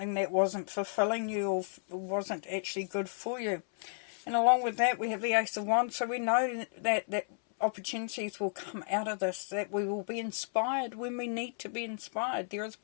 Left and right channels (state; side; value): silent; right; 56 dB below the other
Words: that wasn't fulfilling you or wasn't actually good for you. And along with that, we have the Ace of Wands, so we know that opportunities will come out of this, that we will be inspired when we need to be inspired. There is